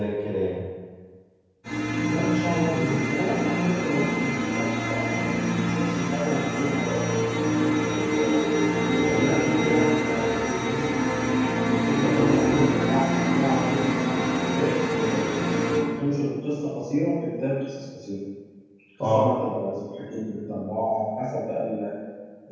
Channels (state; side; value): identical; both; correlation 1.00